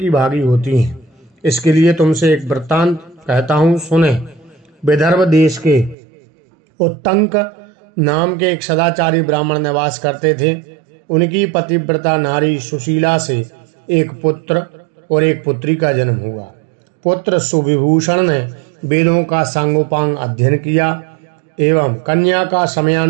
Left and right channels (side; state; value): left; drops out; at 6.0 s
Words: भागी होती हैं। इसके लिए तुमसे एक वृत्तांत कहता हूँ, सुने। विदर्भ देश के उत्तंक नाम के एक सदाचारी ब्राह्मण निवास करते थे। उनकी पतिव्रता नारी सुशीला से एक पुत्र और एक पुत्री का जन्म हुआ। पुत्र सुविभूषण ने वेदों का सांगोपांग अध्ययन किया एवं कन्या का